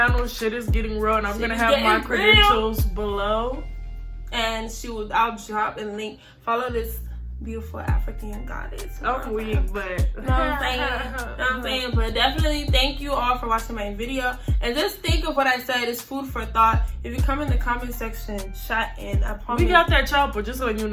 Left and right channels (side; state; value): both; identical; correlation 1.00